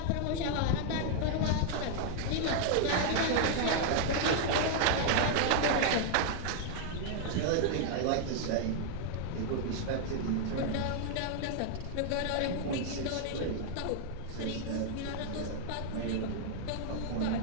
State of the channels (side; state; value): both; different; correlation -0.01